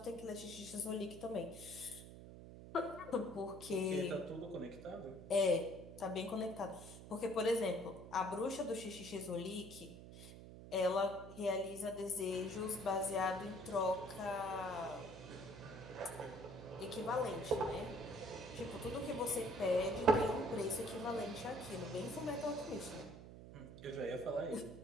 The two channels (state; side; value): noise; right; hum, 13 dB below the sound